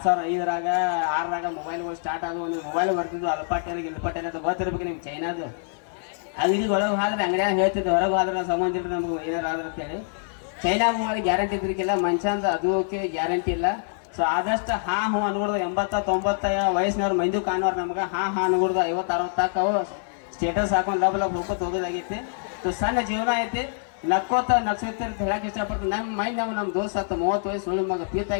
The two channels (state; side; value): silent; right; digital silence